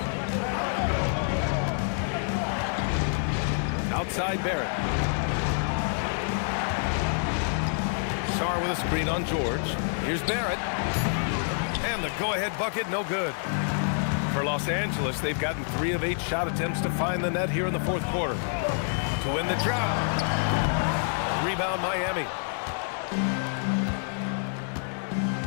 Outside Barrett. Sarr with a screen on George. Here's Barrett. And the go-ahead bucket, no good. For Los Angeles, they've gotten 3 of 8 shot attempts to find the net here in the fourth quarter. To win the job. Rebound Miami.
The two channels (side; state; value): right; silent; 60 dB below the other